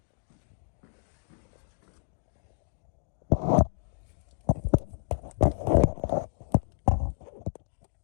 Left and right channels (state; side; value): silent; right; digital silence